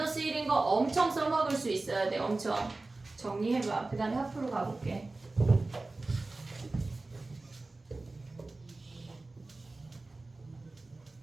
1인 거 엄청 써먹을 수 있어야 돼. 엄청. 정리해봐. 그 다음에 하프로 가볼게.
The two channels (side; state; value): left; quieter; 3.2 dB